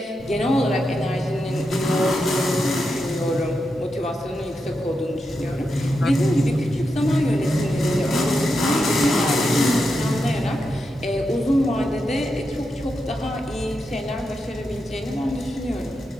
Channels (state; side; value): normal; both; correlation 0.86